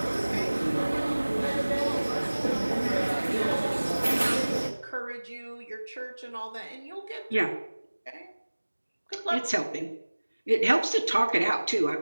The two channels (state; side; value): inverted; both; correlation -1.00